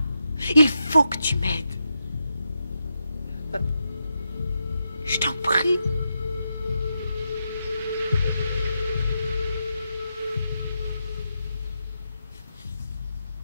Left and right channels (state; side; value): inverted; both; correlation -0.85